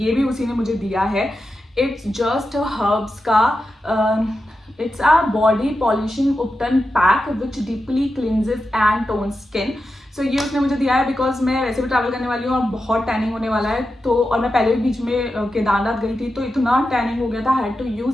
ये भी उसी ने मुझे दिया है. इट्स जस्ट हर्ब्स का it's a body polishing upton pack which deeply cleanses and tones skin. So ये उसने मुझे दिया है बिकॉज मैं वैसे भी ट्रैवल करने वाली हूँ और बहुत टैनिंग होने वाला है. तो और मैं पहले भी बीच में केदारनाथ गई थी तो इतना टैनिंग हो गया था, हैड टू यूज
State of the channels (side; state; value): both; normal; correlation 0.90